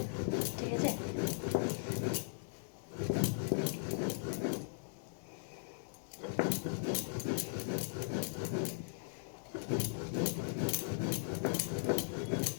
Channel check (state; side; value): silent; right; digital silence